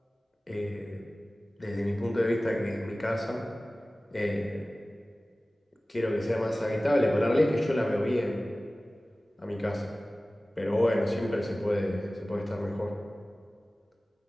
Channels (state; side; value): normal; both; correlation 0.97